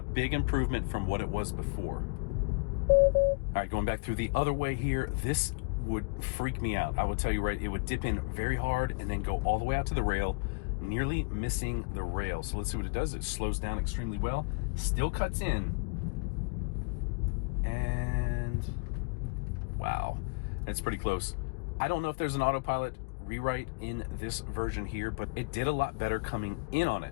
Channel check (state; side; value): quieter; right; 32.5 dB